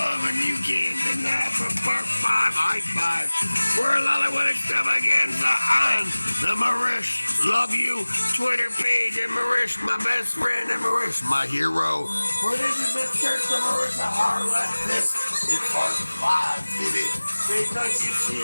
and you can't deny for part 5, high five. We're Lollywood Extravaganza on the Marish Love You Twitter page, and Marish, my best friend, and Marish, my hero. For this is the Church of Marissa Harlot. This is part 5, baby. Because you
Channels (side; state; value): both; inverted; correlation -1.00